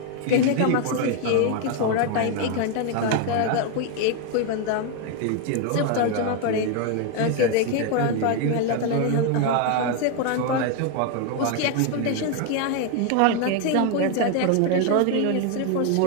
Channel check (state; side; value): different; both; correlation 0.01